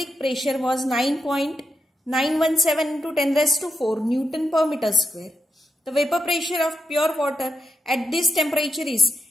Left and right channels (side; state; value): both; normal; correlation 0.85